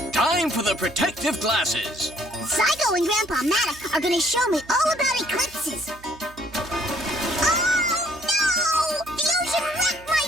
Time for the protective glasses. Zygo and Grandpa Matt are gonna show me all about eclipses. Oh no! The ocean wrecked my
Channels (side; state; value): right; noise; hum, 22 dB below the sound